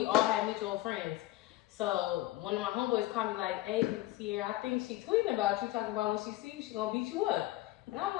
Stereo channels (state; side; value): quieter; right; 16.9 dB